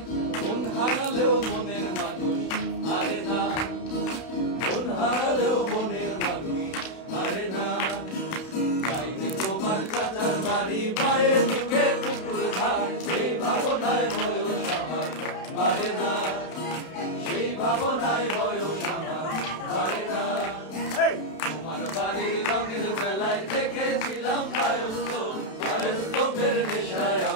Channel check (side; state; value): right; late; 32 ms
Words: মন হারালেও মনের মানুষ হারে না মন হারালেও মনের মানুষ হারে না যাইনি তোমার চাচার বাড়ি মায়ের দিকে পুকুর ঘাট সেই ভাবনায় বয়স আমার বাড়ে না সেই ভাবনায় বয়স আমার বাড়ে না তোমার বাড়ির রঙের বেলায় দেখেছিলাম বায়োস্কোপের নেশায়